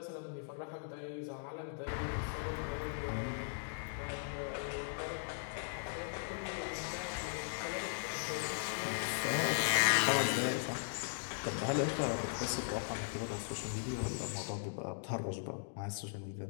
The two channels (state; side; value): silent; right; digital silence